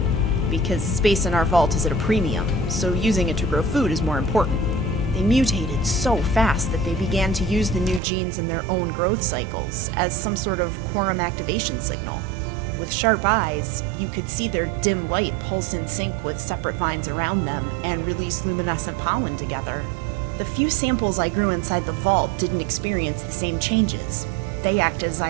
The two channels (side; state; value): left; drops out; at 8.0 s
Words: because space in our vault is at a premium, so using it to grow food is more important. They mutated so fast that they began to use the new genes in their own growth cycles as some sort of quorum activation signal. With sharp eyes, you could see their dim light pulse in sync with separate vines around them and release luminescent pollen together. The few samples I grew inside the vault didn't experience the same changes. They act as I